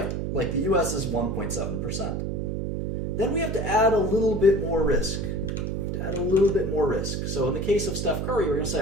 Like the U.S. is 1.7%. Then we have to add a little bit more risk. So in the case of Steph Curry, we're going to say,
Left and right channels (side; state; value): right; noise; hum, 2 dB below the sound